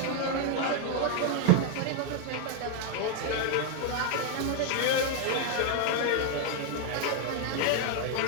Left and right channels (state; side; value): different; both; correlation 0.01